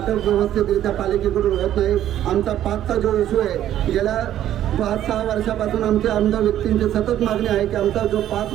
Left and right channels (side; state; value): left; quieter; 11.8 dB